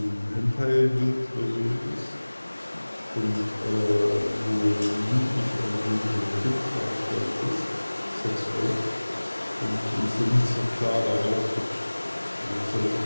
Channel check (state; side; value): inverted; both; correlation -1.00